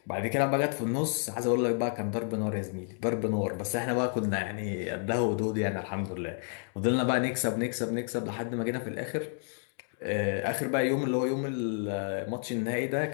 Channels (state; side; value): silent; right; 57 dB below the other